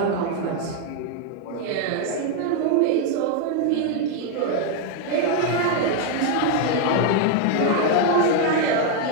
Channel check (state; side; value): different; both; correlation 0.01